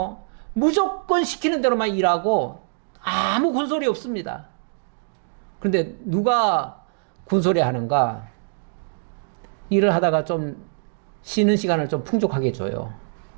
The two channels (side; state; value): left; silent; digital silence